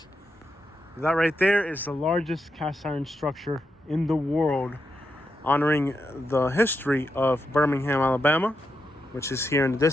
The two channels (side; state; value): both; normal; correlation 0.85